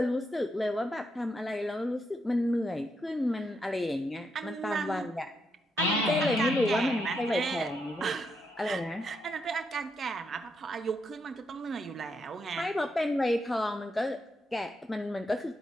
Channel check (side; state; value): both; normal; correlation 0.80